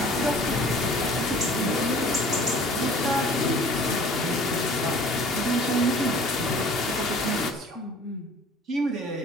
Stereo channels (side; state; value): both; normal; correlation 0.49